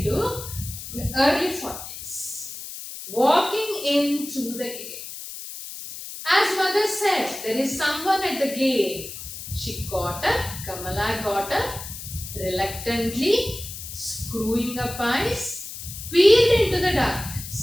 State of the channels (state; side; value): noise; left; hiss, 10 dB below the sound